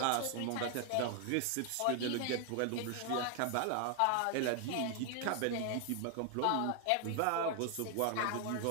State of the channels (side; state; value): both; different; correlation 0.00